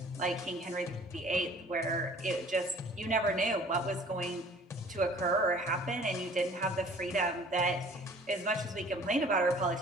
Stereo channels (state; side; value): normal; both; correlation 0.51